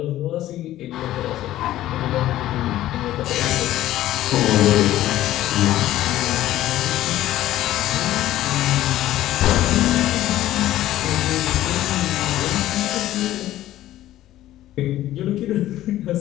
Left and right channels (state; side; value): quieter; right; 14.2 dB